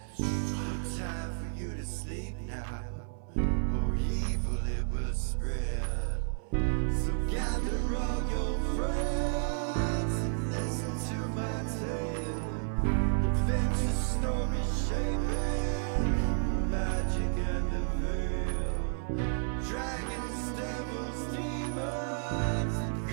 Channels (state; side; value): silent; left; 57 dB below the other